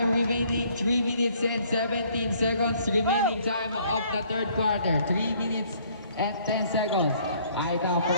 remaining 3 minutes and 17 seconds remaining time of the third quarter. 3 minutes and 10 seconds. Ay ito,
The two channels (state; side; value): inverted; both; correlation -0.62